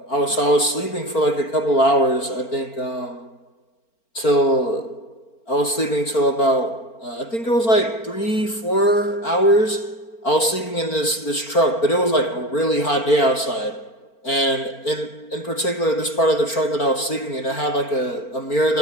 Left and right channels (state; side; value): late; right; 4.4 ms